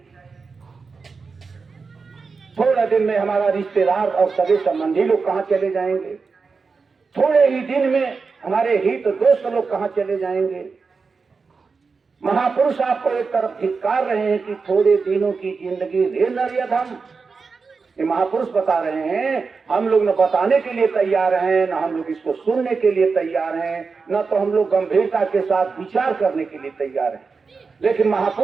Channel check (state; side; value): quieter; left; 4.8 dB